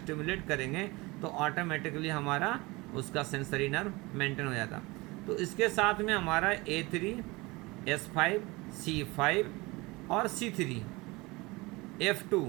करेंगे, तो ऑटोमेटिकली हमारा उसका सेंसरी नर्व मेंटेन हो जाता। तो इसके साथ में हमारा A3, S5, C5 और C3, F2,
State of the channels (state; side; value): quieter; left; 23.4 dB